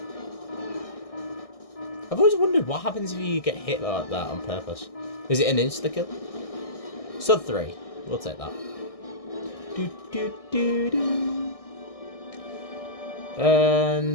I've always wondered what happens if you get hit like that on purpose. Is it an insta-kill? Sub 3. We'll take that. Do, do, do, do.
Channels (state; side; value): late; right; 1.6 ms